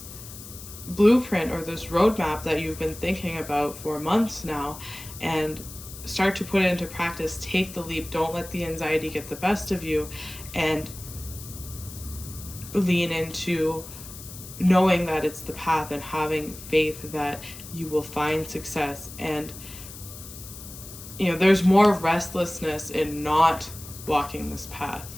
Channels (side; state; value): left; noise; hiss, 14 dB below the sound